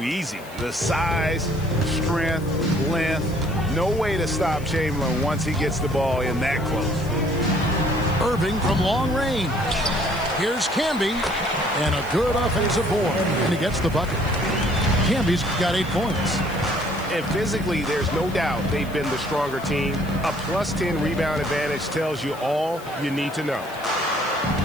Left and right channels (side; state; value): left; noise; hiss, 21 dB below the sound